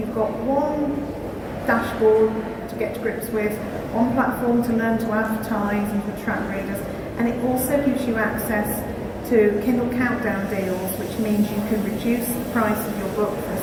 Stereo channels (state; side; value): identical; both; correlation 1.00